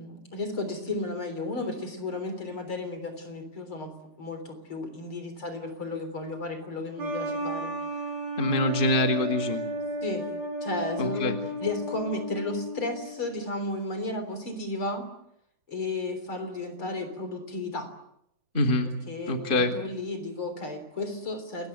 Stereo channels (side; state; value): left; late; 3.5 ms